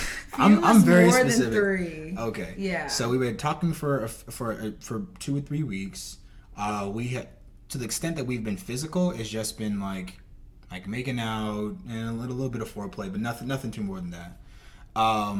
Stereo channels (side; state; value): both; identical; correlation 1.00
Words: I'm very more specific. Than 3. Okay. Yeah. So we were talking for 2 or 3 weeks. We had, to the extent that we've been physical, it's just been like making out and a little bit of foreplay, but nothing too more than that.